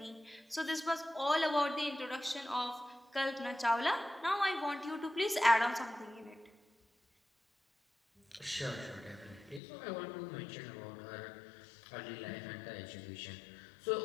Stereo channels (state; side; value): drops out; right; at 9.6 s